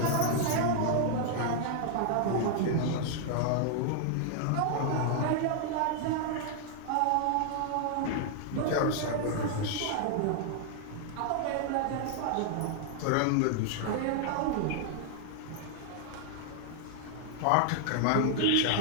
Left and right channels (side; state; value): both; different; correlation 0.00